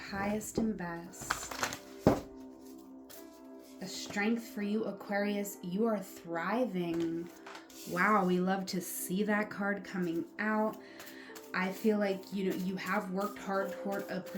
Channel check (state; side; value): identical; both; correlation 1.00